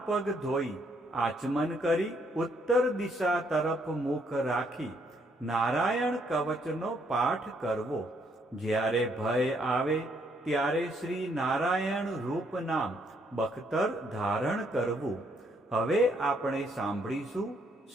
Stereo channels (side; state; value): both; normal; correlation 0.71